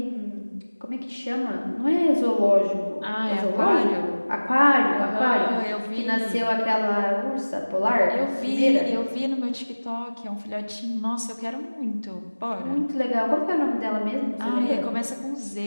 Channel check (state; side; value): inverted; both; correlation -1.00